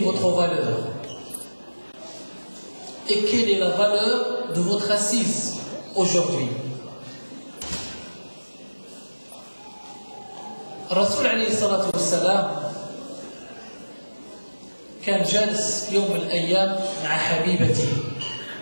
valeur et quelle est la valeur de votre assise aujourd'hui. Rasoul alayhi salatu wassalam كان جالس يوم من الأيام مع حبيبته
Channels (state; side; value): inverted; both; correlation -1.00